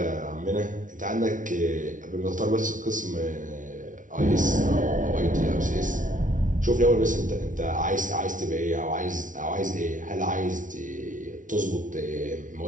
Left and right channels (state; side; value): late; left; 0.38 ms